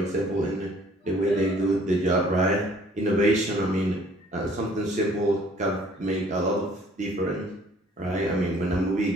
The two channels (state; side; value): normal; both; correlation 0.57